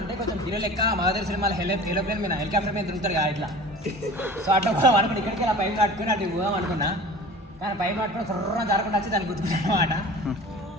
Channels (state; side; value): normal; both; correlation 0.40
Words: కొంచెం హీరో లెక్క మగధీర సినిమాలో ఏరోప్లేన్ మీద హెలికాప్టర్ మీద తిరుగుతారు కదా ఇట్లా. సో అట్లా పోదాం అనుకున్నా, ఇక్కడికి ఇలా పైపు కట్టుకుని అటు పోదాం అనుకున్నా. కానీ పైపు కట్టుకుని సర్రం జరగకుండా వచ్చి దాన్ని గుర్తుకున్నాను అనమాట.